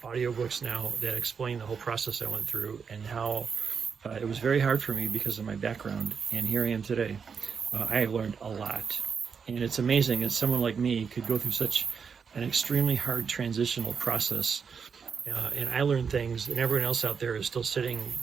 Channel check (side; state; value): left; quieter; 6.2 dB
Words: audiobooks now that explain the whole process I went through and how it was very hard for me because of my background. And here I am today. I have learned a lot. And it's amazing that someone like me could go through such an extremely hard transitional process. And I learned things, and everyone else out there is still sitting,